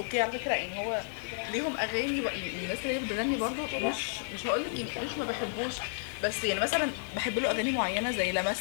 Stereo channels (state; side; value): silent; right; digital silence